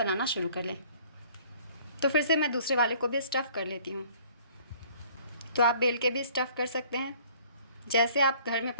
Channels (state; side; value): inverted; both; correlation -0.55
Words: शुरू कर लें। तो फिर से मैं दूसरे वाले को भी स्टफ़ कर लेती हूँ। तो आप बेल के भी स्टफ़ कर सकते हैं, जैसे आप घर में